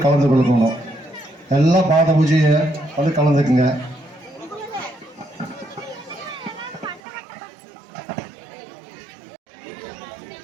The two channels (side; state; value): left; drops out; at 7.0 s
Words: கலந்து கொள்ளணும். எல்லாம் பாத பூஜையை வந்து கலந்துக்குங்க.